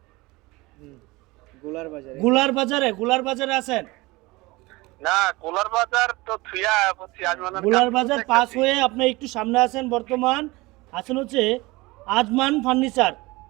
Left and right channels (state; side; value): quieter; left; 22.2 dB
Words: গুলার বাজারে আছেন? না, গোলার বাজার তো থুয়া বলছি আজমান। গুলার বাজার পাস হয়ে আপনি একটু সামনে আছেন, বর্তমান আছেন হচ্ছে আজমান ফার্নিচার।